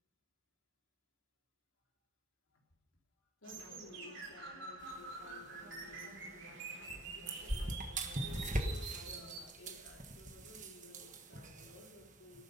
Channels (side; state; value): both; normal; correlation 0.57